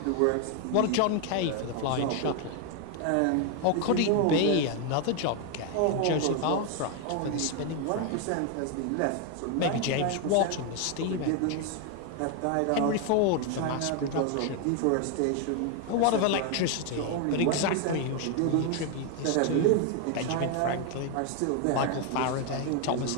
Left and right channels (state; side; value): different; both; correlation 0.01